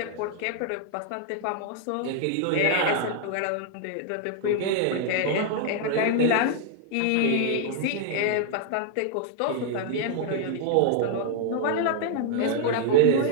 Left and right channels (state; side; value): different; both; correlation 0.00